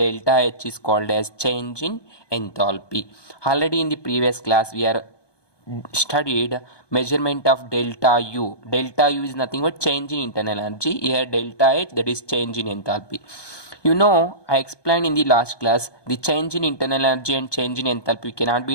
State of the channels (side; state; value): right; late; 1.2 ms